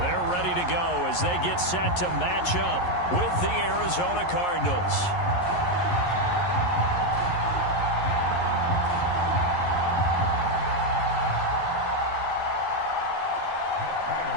they're ready to go as they get set to match up with the Arizona Cardinals.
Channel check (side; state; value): right; late; 11 ms